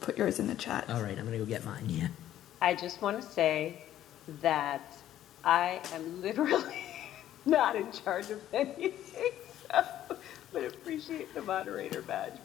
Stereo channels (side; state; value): right; quieter; 12.1 dB